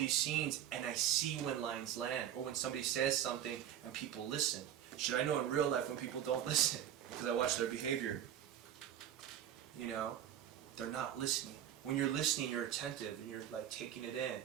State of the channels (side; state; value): left; quieter; 10.5 dB